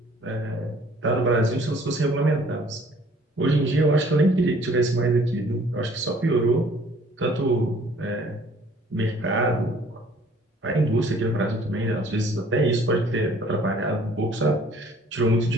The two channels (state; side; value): normal; both; correlation 0.56